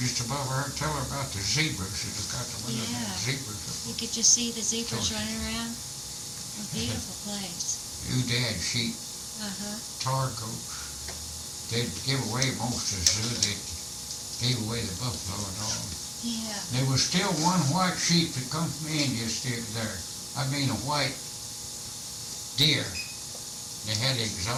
just above her, tell her about the zebras. She's got the one of them Yeah. zebras. You could just see the zebras running around. A beautiful place. Oodad sheep, tar goats. They'd give away most of the zoo. They gave away the buffalo and all. Yeah. There was still one white sheep that come from India still there. I mean a white deer. They had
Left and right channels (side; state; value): both; identical; correlation 1.00